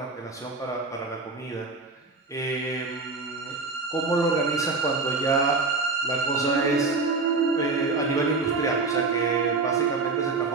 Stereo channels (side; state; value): left; quieter; 3.9 dB